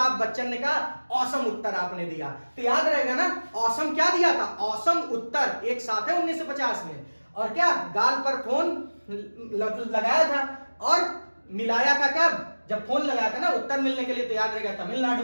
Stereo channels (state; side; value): inverted; both; correlation -1.00